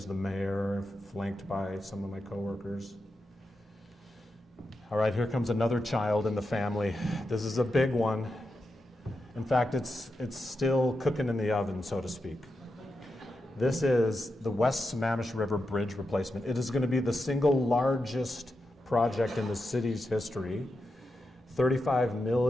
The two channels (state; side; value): normal; both; correlation 0.88